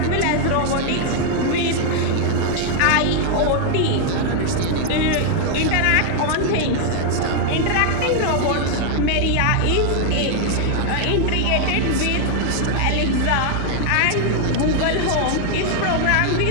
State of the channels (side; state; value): both; different; correlation 0.00